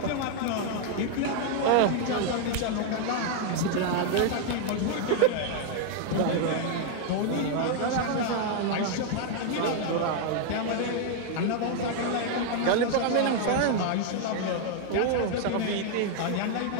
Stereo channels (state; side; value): different; both; correlation 0.00